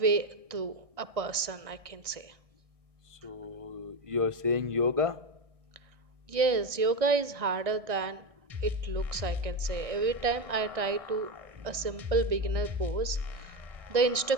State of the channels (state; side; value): late; left; 1.6 ms